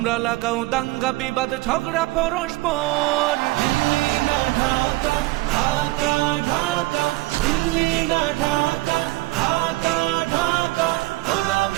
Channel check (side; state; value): left; quieter; 20.2 dB